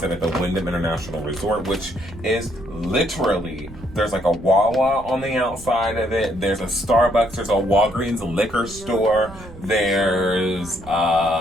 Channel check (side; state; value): right; noise; rumble, 17 dB below the sound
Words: at the Wyndham International Resort, which is literally, there's like a Wawa on the outside of it, there's a Starbucks, there's a Walgreens liquor store, there's,